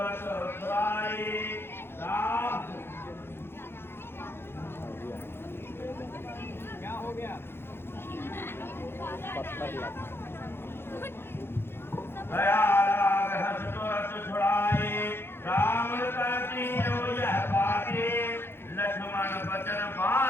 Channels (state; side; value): late; right; 0.11 ms